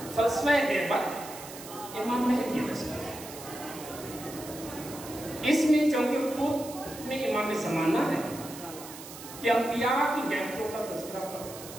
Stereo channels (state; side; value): noise; right; hiss, 14 dB below the sound